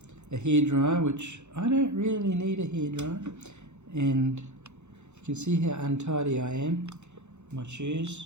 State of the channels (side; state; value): left; late; 0.83 ms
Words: a hairdryer, which I don't really need a hairdryer. And you can see how untidy I am. My